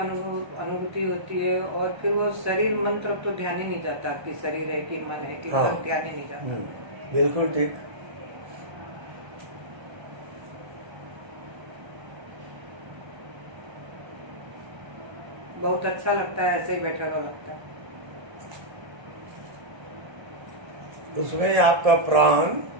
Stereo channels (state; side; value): late; left; 1.3 ms